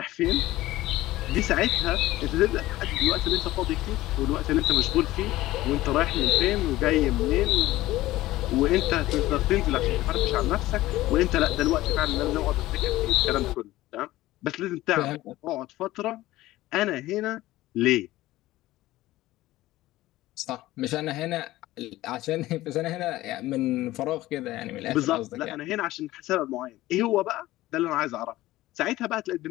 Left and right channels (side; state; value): right; quieter; 16.7 dB